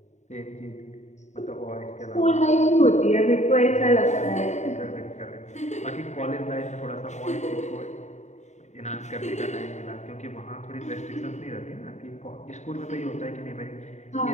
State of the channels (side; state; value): right; late; 0.34 ms